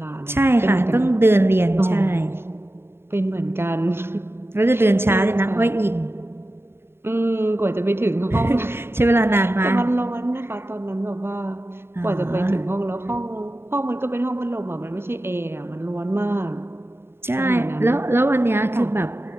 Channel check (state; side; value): late; left; 0.11 ms